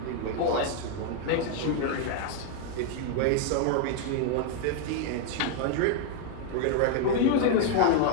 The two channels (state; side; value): different; both; correlation 0.01